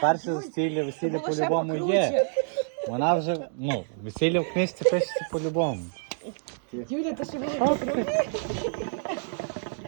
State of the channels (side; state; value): left; silent; digital silence